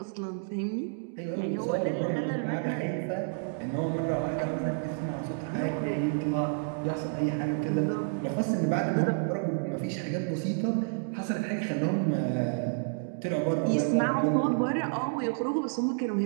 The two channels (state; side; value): silent; left; digital silence